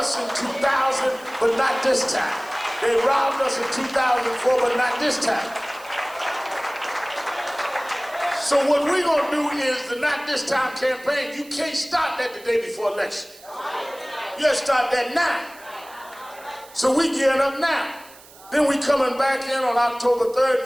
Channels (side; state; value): right; noise; hiss, 22 dB below the sound